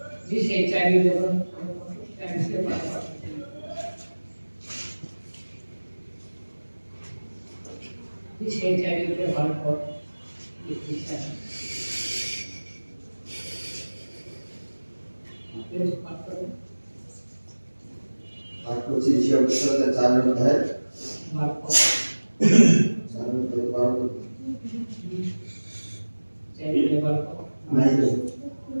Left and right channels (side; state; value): both; inverted; correlation -1.00